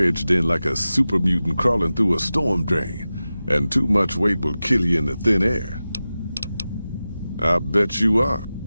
in like a super mutant crawling through a storm drain, and too much weight will kill you in the thin air. I bet you are.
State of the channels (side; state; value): both; inverted; correlation -0.95